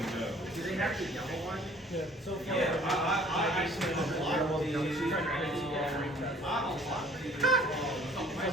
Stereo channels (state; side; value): normal; both; correlation 0.54